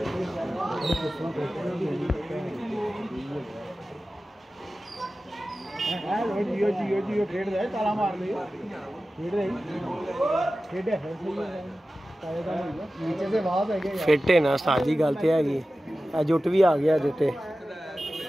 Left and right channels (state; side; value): normal; both; correlation 0.95